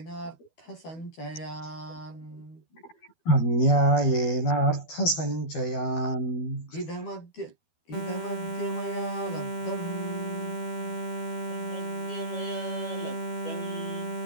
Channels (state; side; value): late; right; 12 ms